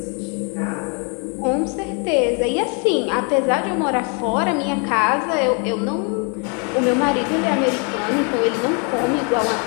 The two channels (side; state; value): right; quieter; 36.3 dB